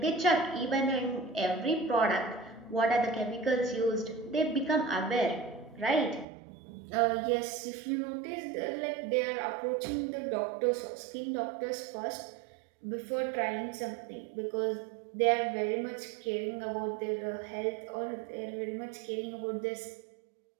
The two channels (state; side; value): drops out; left; at 6.2 s